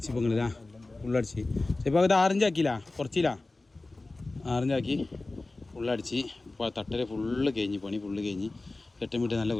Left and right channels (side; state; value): right; quieter; 3.2 dB